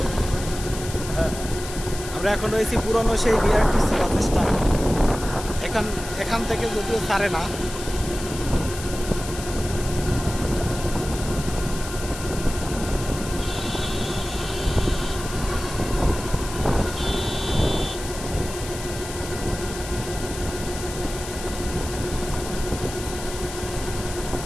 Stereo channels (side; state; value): left; noise; hiss, 11 dB below the sound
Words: আমরা এখন রয়েছি পুরনো সেই বিআরটিসি বাস স্ট্যান্ড। এখান থেকে যদিও ছাড়ে না।